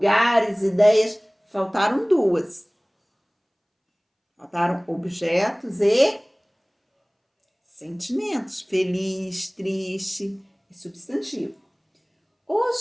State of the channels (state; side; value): identical; both; correlation 1.00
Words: ideias, faltaram duas. Faltaram objetos e sentimentos. Feliz, triste e substantivo.